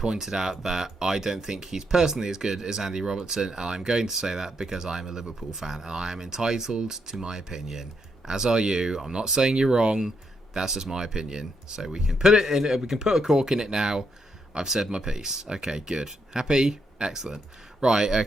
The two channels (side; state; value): both; normal; correlation 0.78